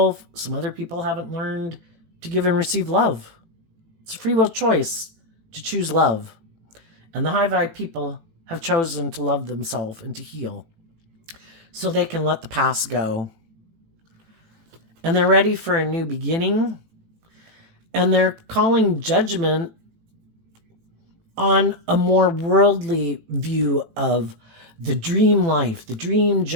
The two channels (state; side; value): late; left; 18 ms